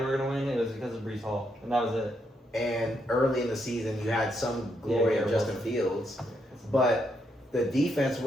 were gonna win, it was because of Brees Hall, and that was it. And early in the season, you had some glory of Justin Fields, but the defense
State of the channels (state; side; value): normal; both; correlation 0.78